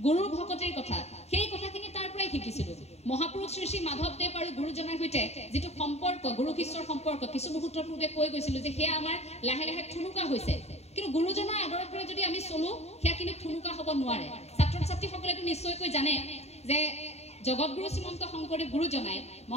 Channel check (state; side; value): late; right; 0.31 ms